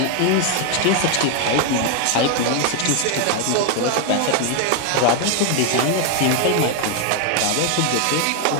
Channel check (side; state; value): both; different; correlation 0.00